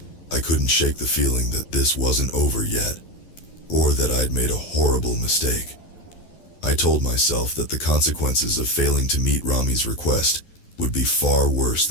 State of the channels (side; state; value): right; late; 11 ms